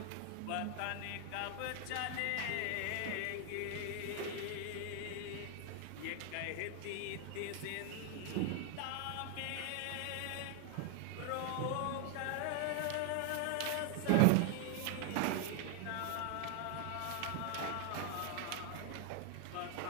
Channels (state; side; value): different; both; correlation 0.00